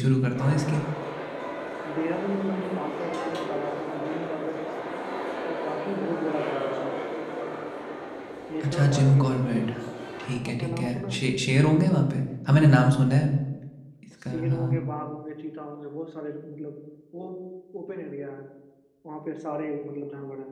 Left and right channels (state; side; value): identical; both; correlation 1.00